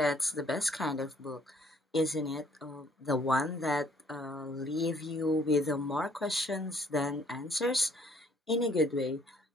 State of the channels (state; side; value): normal; both; correlation 0.62